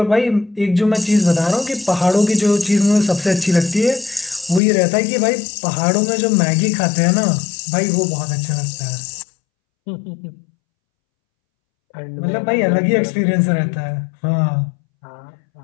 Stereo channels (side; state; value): right; drops out; at 4.6 s